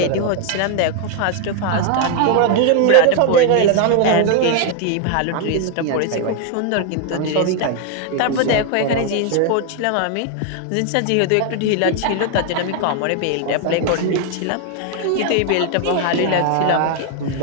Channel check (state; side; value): different; both; correlation 0.00